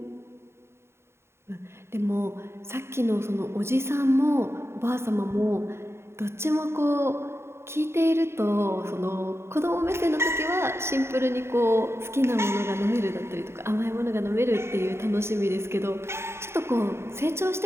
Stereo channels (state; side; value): late; left; 0.12 ms